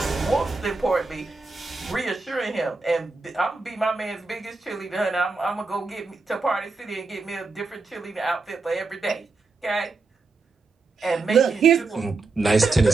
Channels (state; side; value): quieter; left; 3.8 dB